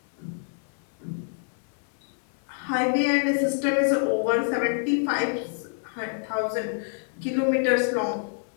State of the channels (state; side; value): silent; right; 60 dB below the other